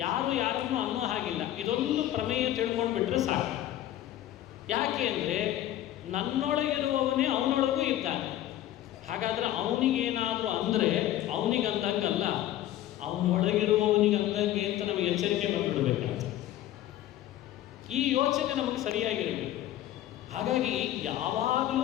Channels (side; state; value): right; quieter; 13.2 dB